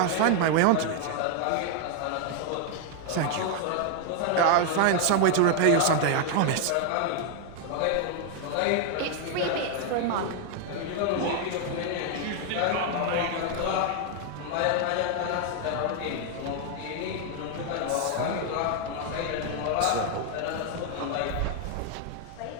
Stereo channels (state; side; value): different; both; correlation 0.00